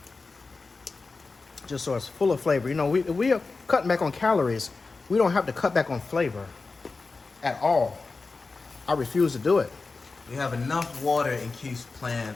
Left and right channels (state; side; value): quieter; right; 4.0 dB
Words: just so it's full of flavor. We are cutting back on calories. We don't have to cut back on flavor at all. I refuse to do it. We have enough water in Keith's plan